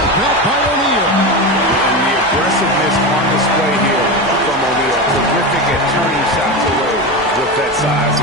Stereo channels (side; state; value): both; normal; correlation 0.20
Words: back by O'Neal. And the aggressiveness on display here from O'Neal. Terrific at turning shots away with that size